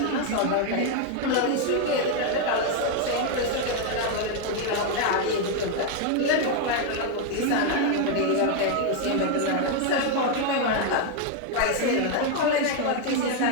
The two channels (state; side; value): different; both; correlation 0.01